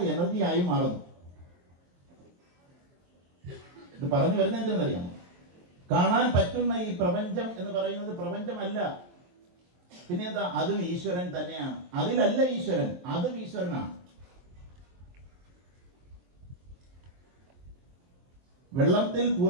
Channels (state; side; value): late; left; 22 ms